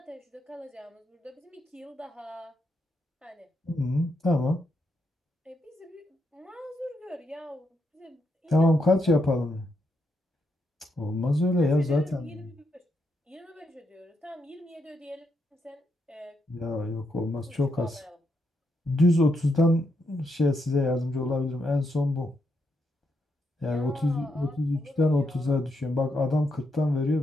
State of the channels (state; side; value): normal; both; correlation 0.81